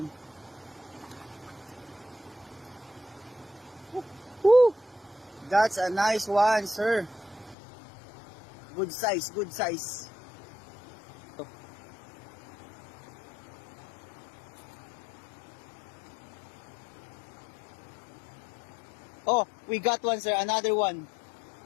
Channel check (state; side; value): drops out; right; at 7.6 s